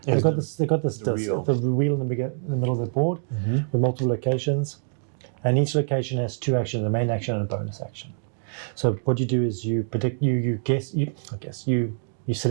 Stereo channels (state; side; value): silent; left; digital silence